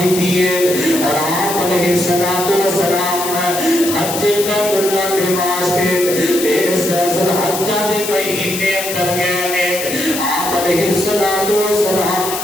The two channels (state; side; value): noise; left; hiss, 5 dB below the sound